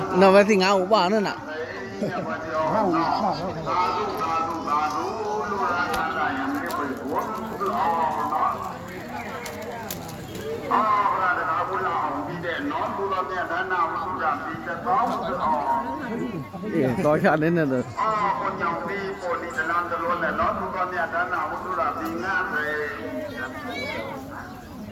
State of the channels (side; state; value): both; identical; correlation 1.00